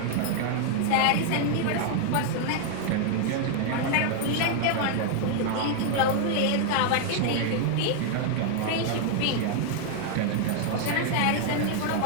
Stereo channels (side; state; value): both; different; correlation 0.00